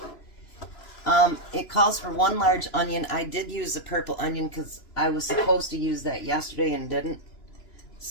It calls for 1 large onion. I did use the purple onion because I was supposed to use that yesterday and didn't.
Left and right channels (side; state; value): right; late; 2.9 ms